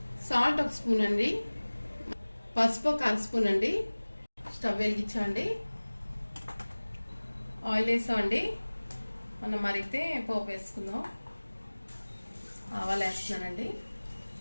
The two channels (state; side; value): inverted; both; correlation -1.00